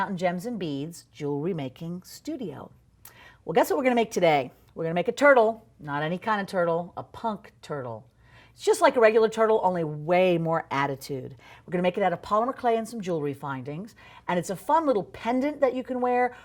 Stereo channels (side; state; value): both; identical; correlation 1.00